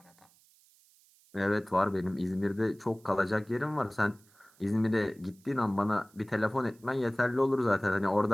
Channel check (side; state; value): right; noise; hiss, 30 dB below the sound